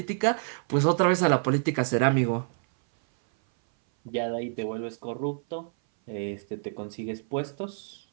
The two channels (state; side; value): silent; left; 57 dB below the other